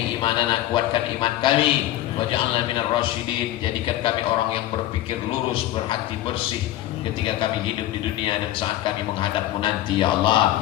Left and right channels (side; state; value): right; quieter; 14.3 dB